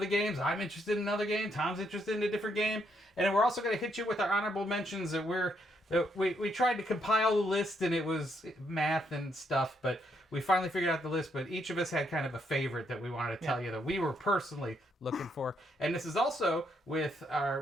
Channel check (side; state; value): both; normal; correlation 0.75